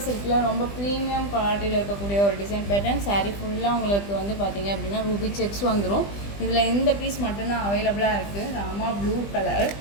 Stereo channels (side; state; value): right; late; 20 ms